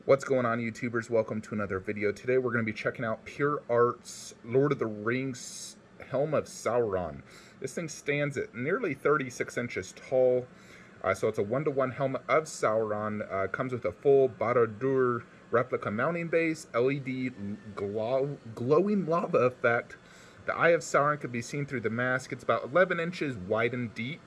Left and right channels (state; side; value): identical; both; correlation 1.00